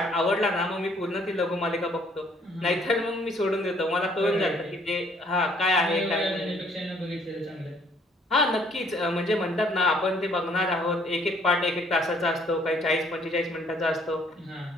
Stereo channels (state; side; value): normal; both; correlation 0.63